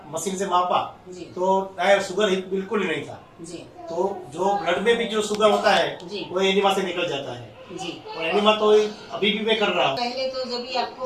मशीन से मापा जी तो शुगर ही बिल्कुल ही नहीं था। जी तो जो ब्लड में भी जो शुगर होता है जी। वो एनिमा से निकल जाता है जी। और एनिमा तो अभी भी मैं कर रहा हूँ। पहले तो जब भी आपको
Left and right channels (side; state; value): both; identical; correlation 1.00